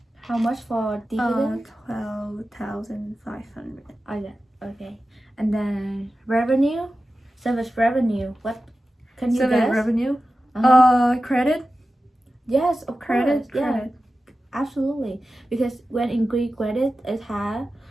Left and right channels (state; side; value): normal; both; correlation 0.94